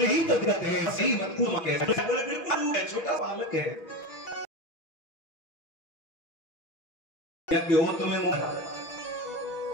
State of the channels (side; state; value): right; late; 6.1 ms